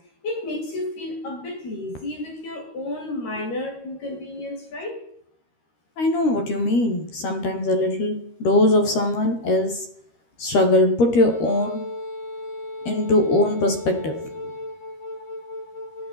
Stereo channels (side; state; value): right; late; 13 ms